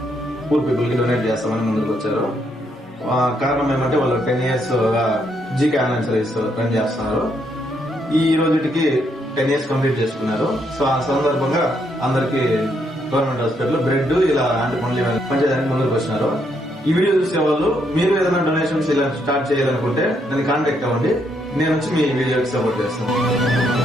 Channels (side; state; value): both; normal; correlation 0.75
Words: పూర్ పీపుల్ కి డొనేట్ చేస్తామని ముందుకు వచ్చారు. కారణం ఏమంటే వాళ్ళు 10 years GK online service run చేస్తున్నారు. ఈ రోజుకి 10 years కంప్లీట్ చేసుకున్నారు. సో ఆ సందర్భంగా అందరికి గవర్నమెంట్ హాస్పిటల్ బ్రెడ్ ఇలా యాంటీ పండ్లు పనిచేయడానికి ముందుకు వచ్చినారు. ఈ వీడియో చూసే వాళ్ళు మీరు ఏదైనా డొనేషన్స్ ఇలా స్టార్ట్ చేయాలనుకుంటే నన్ను కాంటాక్ట్ అవ్వండి. నేను వచ్చి మీ వీడియోకి సపోర్ట్ చేస్తాను.